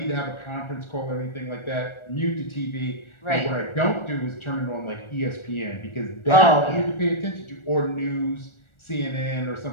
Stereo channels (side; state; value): right; late; 1.4 ms